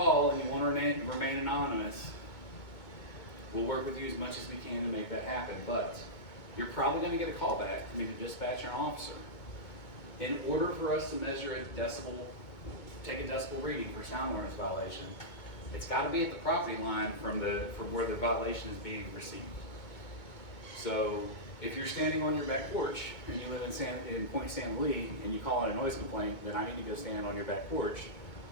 and you want to remain anonymous, we'll work with you as much as we can to make that happen. But you're probably going to get a call back from either dispatcher or officer. In order for us to measure a decibel, take a decibel reading for sound awareness violation, it's got to be at the property line from where the violation is being received. So if you're standing on your back porch and you live in Point San Luis and you call in a noise complaint, then I need to go stand on your back porch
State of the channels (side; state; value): right; late; 2.2 ms